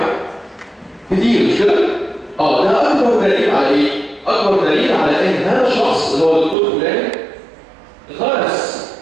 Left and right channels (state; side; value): drops out; left; at 6.6 s